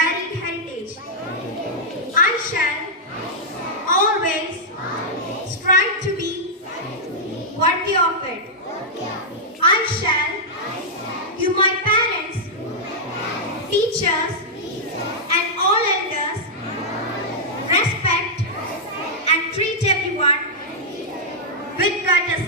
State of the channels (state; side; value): normal; both; correlation -0.08